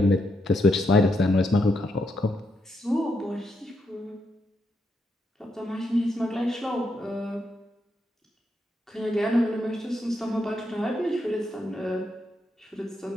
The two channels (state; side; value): normal; both; correlation 0.80